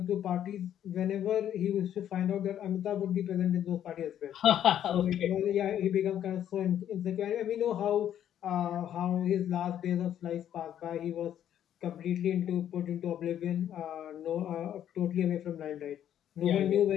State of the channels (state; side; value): quieter; right; 10.5 dB